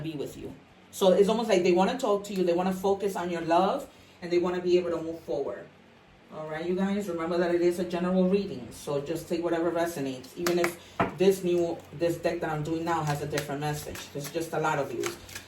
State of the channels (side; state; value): both; identical; correlation 1.00